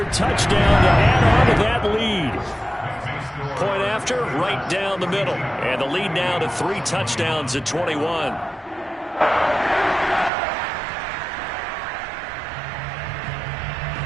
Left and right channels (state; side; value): drops out; left; at 10.3 s